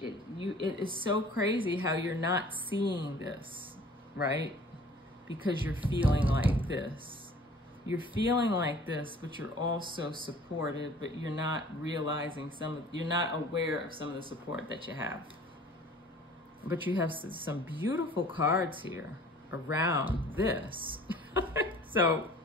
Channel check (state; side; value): normal; both; correlation 0.49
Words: is so crazy how you're not seeing this, right? Because you're feeling like this. You're feeling like this, but you're also supported, but you're not realizing you're not aware of some of the support that you have. But you have some beautiful cards here around this. So